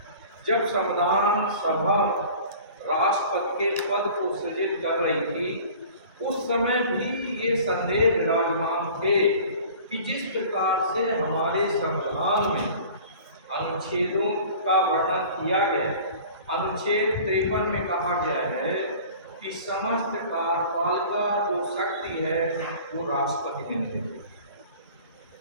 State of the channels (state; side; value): inverted; both; correlation -0.45